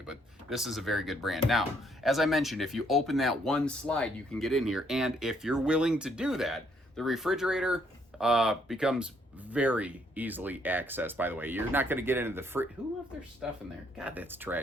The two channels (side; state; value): both; normal; correlation 0.69